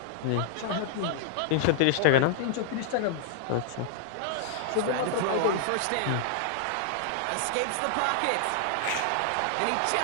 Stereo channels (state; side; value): different; both; correlation -0.01